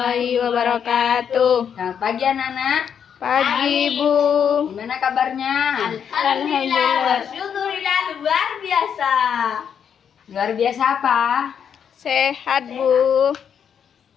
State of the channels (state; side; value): quieter; right; 7.9 dB